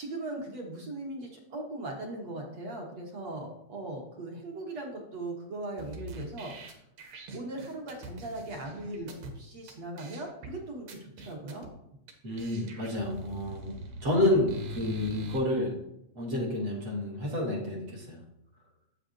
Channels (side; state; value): left; late; 8.7 ms